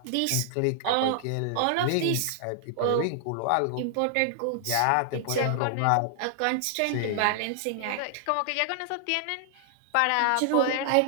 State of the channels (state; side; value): different; both; correlation 0.00